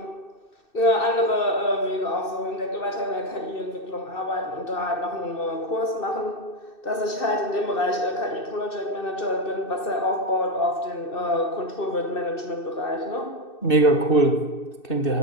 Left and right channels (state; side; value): late; right; 2.6 ms